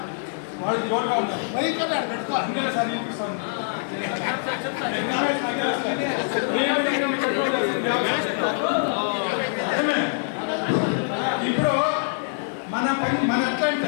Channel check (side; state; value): right; silent; 62 dB below the other